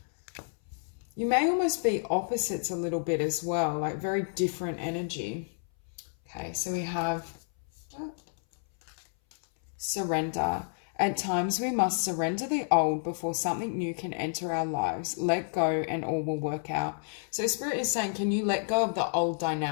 You may almost be opposites a little bit as well, like very different energy. Okay, so we have surrender. At times we must surrender the old before something new can enter our lives. Let go and all will work out. So Spirit is saying, can you let go of the old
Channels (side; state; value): right; silent; 58 dB below the other